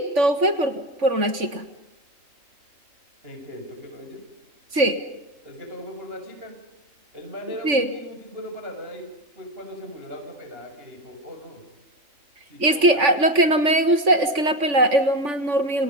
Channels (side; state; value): left; late; 3.5 ms